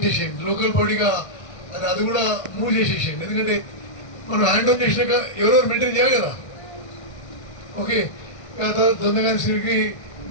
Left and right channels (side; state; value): right; late; 1.6 ms